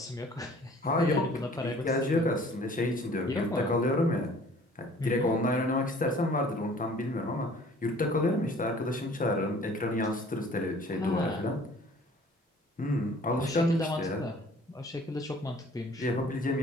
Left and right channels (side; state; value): both; normal; correlation 0.52